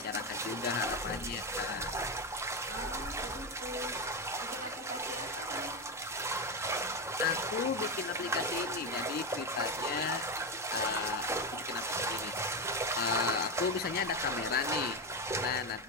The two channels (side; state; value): both; normal; correlation 0.13